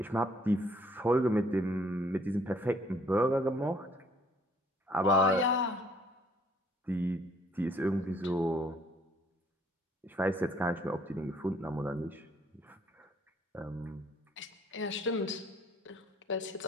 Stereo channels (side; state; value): both; normal; correlation 0.62